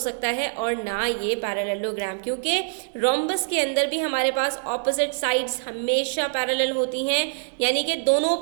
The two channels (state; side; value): silent; left; digital silence